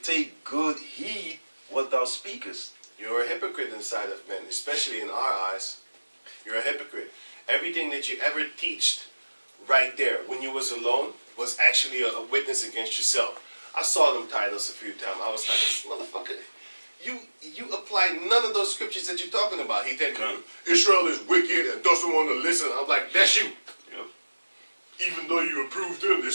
take good heed what thou speakest. You're a hypocrite in the sight of men, especially in our eyes. You're a hypocrite. Everything that you ever teached right there when you was alone was actually a witness against yourself. I saw them titles a few times. I was like, motherfucker, you apply none of those scriptures that you're talking about. He said, Israel is wicked and doesn't want to listen. I'm like, that's you. Even though you approve them, they're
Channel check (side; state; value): both; inverted; correlation -1.00